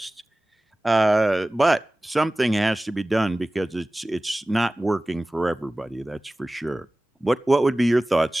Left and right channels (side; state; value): both; normal; correlation 0.97